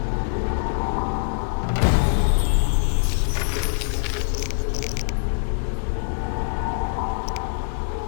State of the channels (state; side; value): silent; right; digital silence